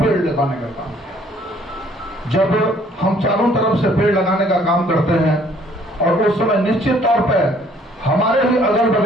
लगाने का काम किया। जब हम चारों तरफ से पेड़ लगाने का काम करते हैं और उस समय निश्चित तौर पर हमारे ही अगल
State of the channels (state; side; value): normal; both; correlation 0.60